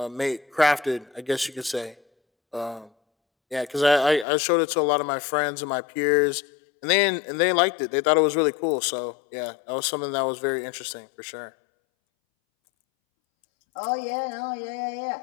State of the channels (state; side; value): drops out; right; at 4.2 s